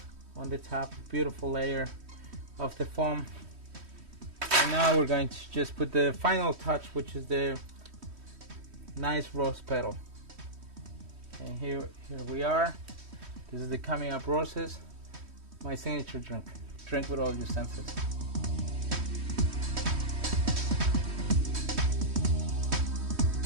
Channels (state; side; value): late; left; 3.1 ms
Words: top, beautiful layer of the foam. And now we're going to just put the final touch, which is the nice rose petal. And here we are. This is the Coming Up Roses, my signature drink. Drink with all your senses.